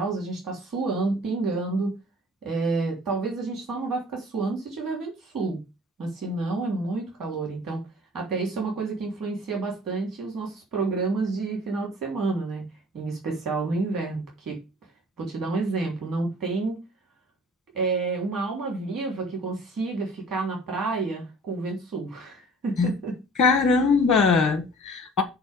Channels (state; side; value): normal; both; correlation 0.48